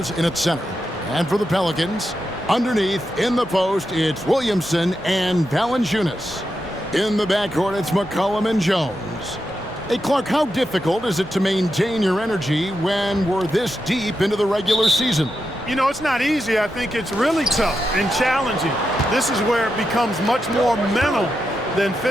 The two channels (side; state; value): both; normal; correlation 0.86